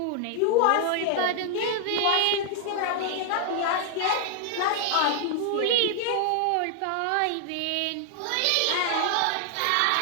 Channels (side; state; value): both; different; correlation 0.00